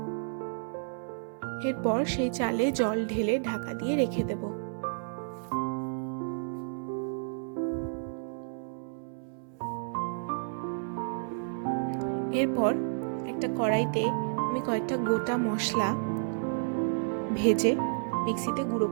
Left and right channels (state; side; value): silent; left; 57 dB below the other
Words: এরপর সেই চালে জল ঢেলে ঢাকা দিয়ে রেখে দেব। এরপর একটা কড়াইতে আমি কয়েকটা গোটা মশলা ভেজে মিক্সিতে গুঁড়ো